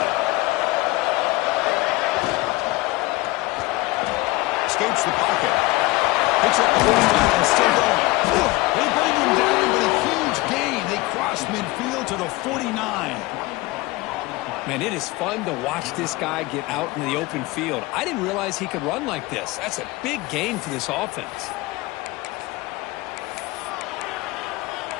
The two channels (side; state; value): right; quieter; 20.8 dB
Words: Escapes the pocket. Picks up the first down and still going. They bring him down, but a huge gain. They cross midfield to the 49. Man, it is fun to watch this guy get out in the open field. I didn't realize he could run like this. That's a big gain for this offense.